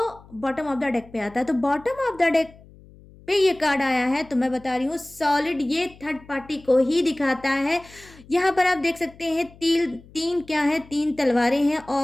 बॉटम ऑफ द डेक पे आता है। तो बॉटम ऑफ द डेक पे ये कार्ड आया है, तो मैं बता रही हूँ सॉलिड ये थर्ड पार्टी को ही दिखाता है। यहाँ पर आप देख सकते हैं तीन क्या है, तीन तलवारें हैं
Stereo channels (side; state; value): left; noise; hum, 23 dB below the sound